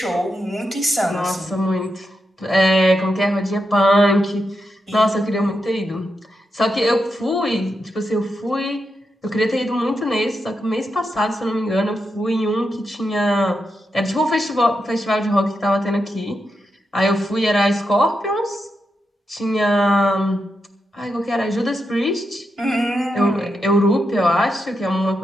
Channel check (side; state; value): both; normal; correlation 0.85